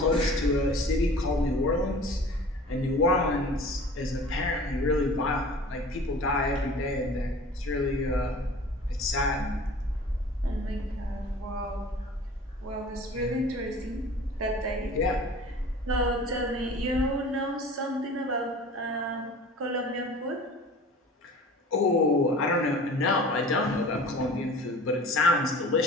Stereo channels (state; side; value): normal; both; correlation 0.43